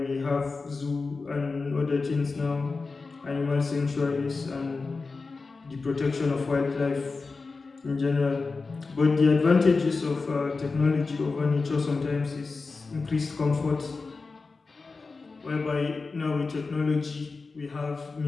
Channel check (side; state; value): right; quieter; 4.1 dB